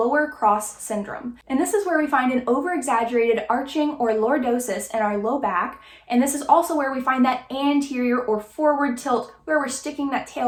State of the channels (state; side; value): identical; both; correlation 1.00